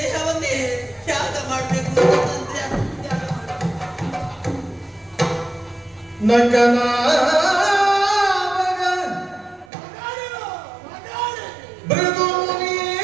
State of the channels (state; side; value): drops out; left; at 9.7 s